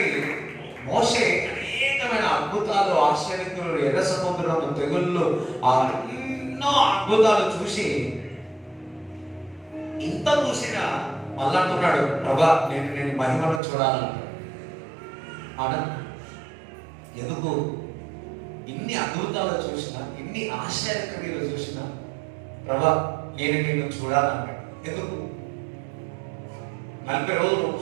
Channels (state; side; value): drops out; left; at 13.6 s